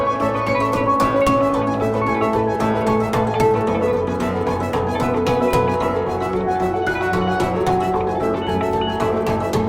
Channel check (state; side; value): identical; both; correlation 1.00